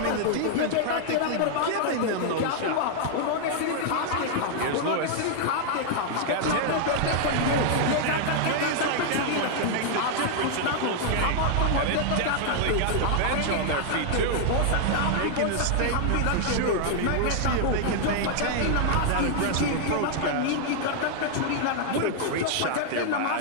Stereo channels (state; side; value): different; both; correlation -0.01